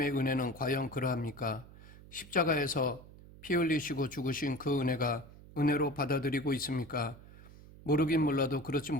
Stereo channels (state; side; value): noise; right; hum, 19 dB below the sound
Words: 은혜는 과연 그러합니까? 십자가에서 피 흘리시고 죽으신 그 은혜가 은혜로 받아들이고 있습니까? 모르긴 몰라도 그렇지